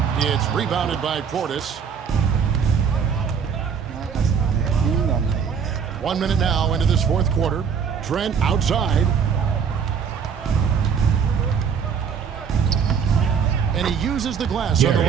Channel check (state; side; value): quieter; left; 6.9 dB